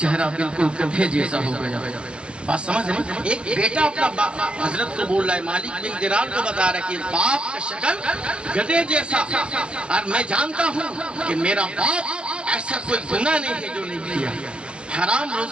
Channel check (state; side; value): late; left; 0.056 ms